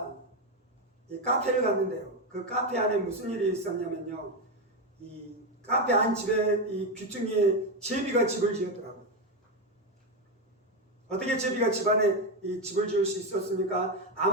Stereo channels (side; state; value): both; normal; correlation 0.10